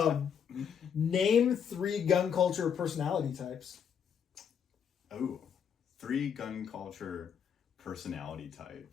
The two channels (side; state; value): right; quieter; 7.6 dB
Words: Name 3 gun culture personality types. Oh, 3 gun culture personality